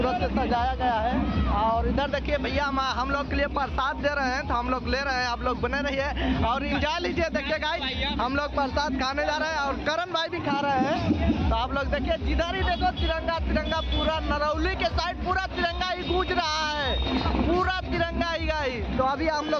से सजाया गया है। और इधर देखिए भैया हम लोग के लिए प्रसाद दे रहे हैं, तो हम लोग ले रहे हैं, आप लोग बने रहिए और एंजॉय लीजिए। देखिए गाइस, हम लोग प्रसाद खाने जा रहे हैं और करण भाई भी खा रहे हैं। तो आप लोग देखिए, जिधर ही देखो तिरंगा तिरंगा, पूरा नरौली के साइड पूरा तिरंगा ही गूंज रहा है, पूरा तिरंगा ही गाइस। तो अभी हम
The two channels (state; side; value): identical; both; correlation 1.00